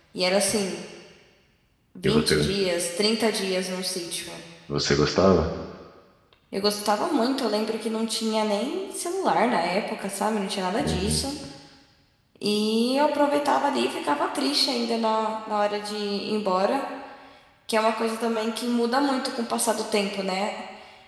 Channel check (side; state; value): both; identical; correlation 1.00